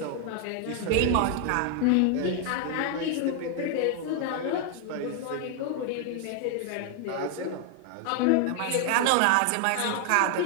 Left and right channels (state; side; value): different; both; correlation 0.00